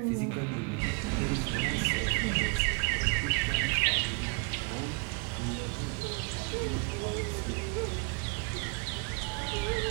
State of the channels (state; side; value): quieter; left; 33.7 dB